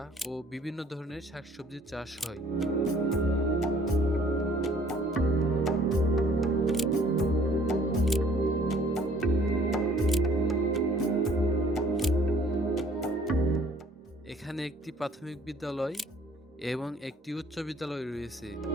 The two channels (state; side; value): normal; both; correlation 0.57